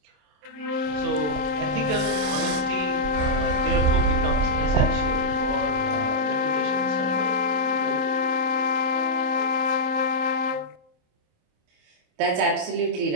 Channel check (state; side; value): late; left; 27 ms